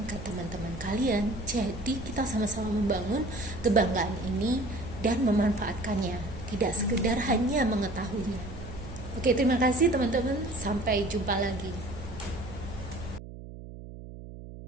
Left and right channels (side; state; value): right; noise; hum, 13 dB below the sound